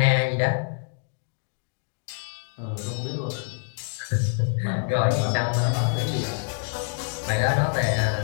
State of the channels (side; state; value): right; silent; 61 dB below the other